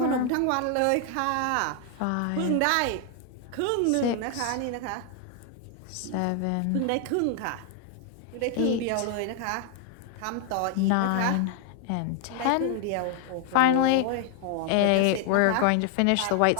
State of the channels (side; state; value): both; different; correlation 0.00